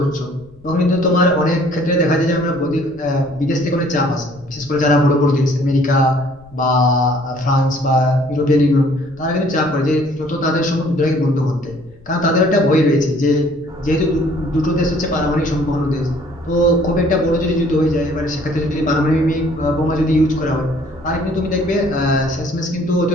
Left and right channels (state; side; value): noise; left; rumble, 26 dB below the sound